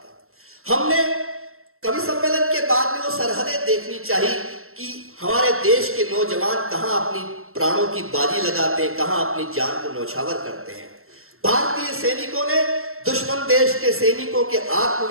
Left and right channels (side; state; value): left; late; 0.62 ms